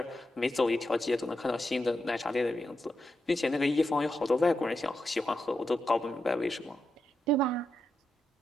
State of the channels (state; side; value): normal; both; correlation 0.86